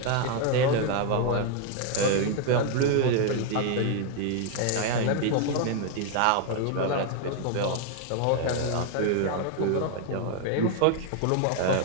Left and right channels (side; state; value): both; different; correlation 0.00